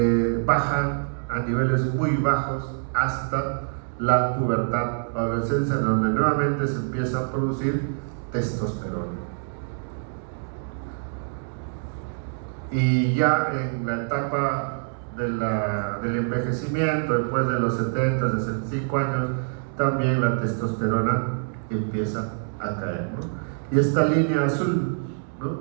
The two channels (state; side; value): silent; left; digital silence